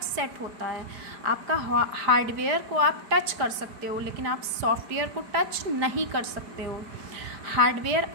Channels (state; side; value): late; left; 4.9 ms